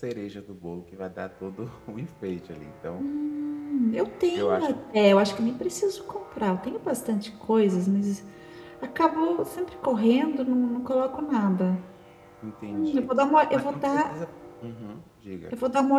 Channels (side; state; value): both; identical; correlation 1.00